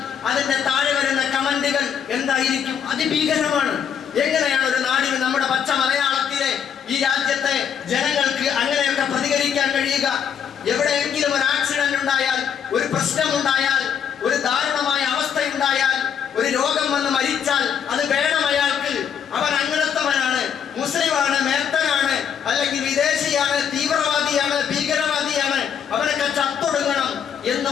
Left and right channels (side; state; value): right; quieter; 7.9 dB